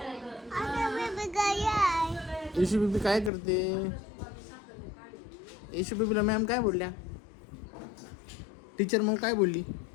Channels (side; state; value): right; drops out; at 3.3 s